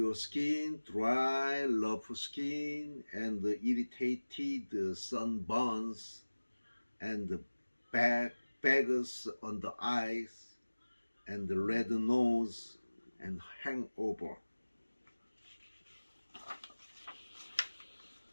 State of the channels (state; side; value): inverted; both; correlation -1.00